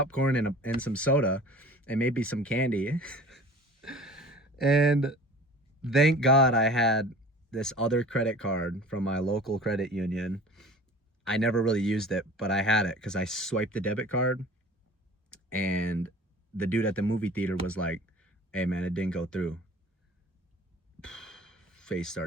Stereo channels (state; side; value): normal; both; correlation 0.43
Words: and some soda and maybe some candy. And thank God I had this other credit card from my local credit union. I never really used it, but I had it because I swiped the debit card, and the dude at the movie theater was like, "Hey man, it didn't go through." Face